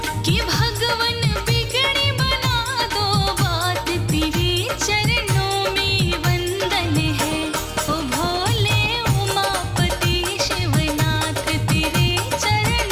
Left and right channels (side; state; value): both; identical; correlation 1.00